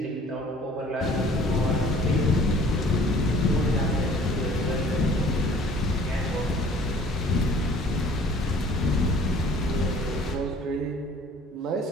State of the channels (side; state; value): both; normal; correlation 0.52